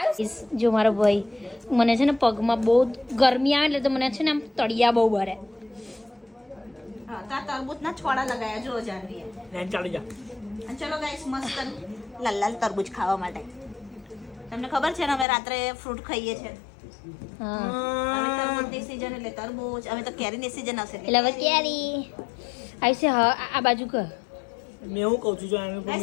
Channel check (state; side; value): drops out; right; at 15.2 s